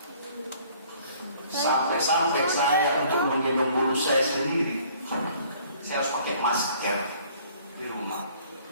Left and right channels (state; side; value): inverted; both; correlation -0.56